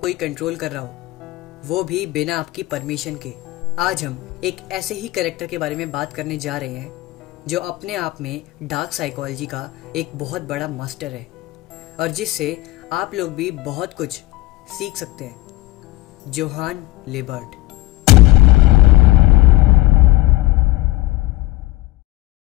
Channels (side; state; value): right; quieter; 19.1 dB